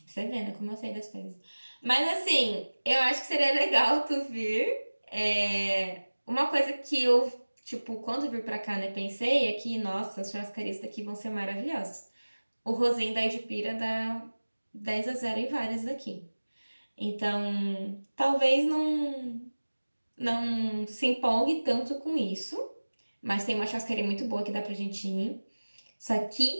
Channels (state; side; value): inverted; both; correlation -1.00